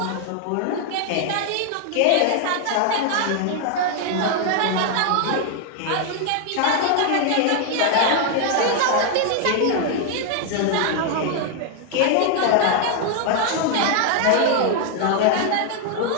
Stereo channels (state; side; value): different; both; correlation 0.00